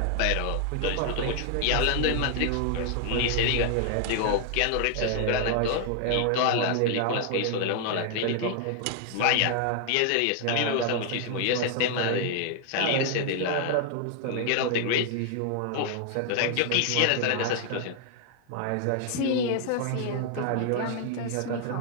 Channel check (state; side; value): different; both; correlation 0.00